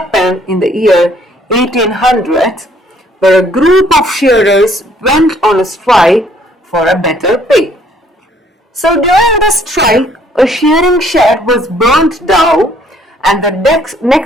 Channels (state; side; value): normal; both; correlation 0.63